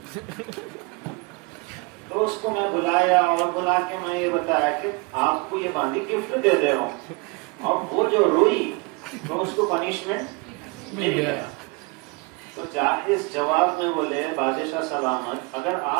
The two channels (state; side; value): quieter; left; 28.4 dB